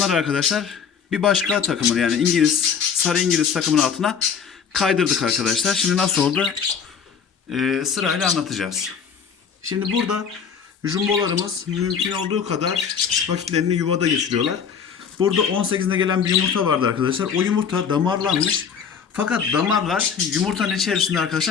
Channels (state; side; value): quieter; right; 6.9 dB